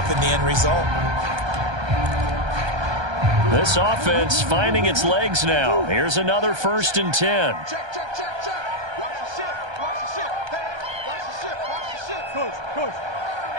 the end result. This offense finding its legs now. Here's another 1st and 10. Check, check, check, check. Watch the shift. Watch the shift. Hey, watch the shift. Watch the shift. Coach. Hey,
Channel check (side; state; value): left; late; 1.3 ms